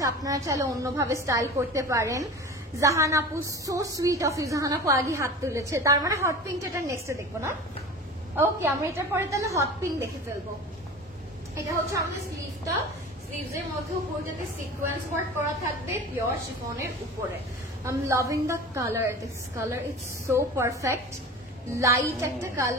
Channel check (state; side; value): normal; both; correlation 0.35